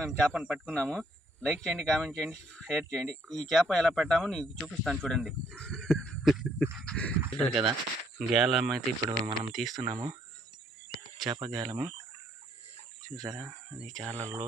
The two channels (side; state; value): both; normal; correlation 0.68